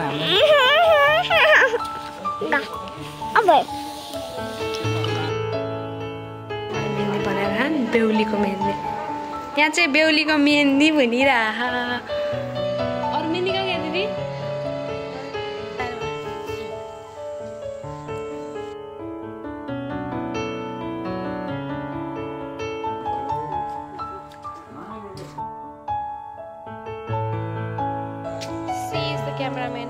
हामीलाई। मेहन्दी बनाएर खान बेहुलीको मेहन्दी। यहाँ चाहिँ बेहुलीको मेहन्दी भनिरहा। अरू मेहन्दी कहाँ गयो दिदी? क्यामेराम्यान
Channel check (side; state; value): both; identical; correlation 1.00